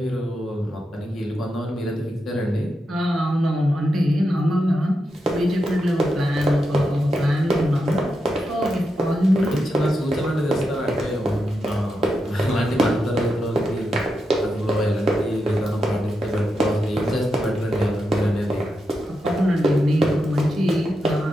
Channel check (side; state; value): both; normal; correlation 0.86